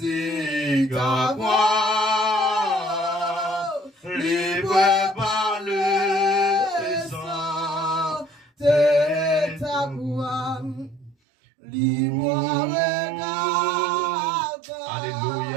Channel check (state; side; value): drops out; left; at 11.2 s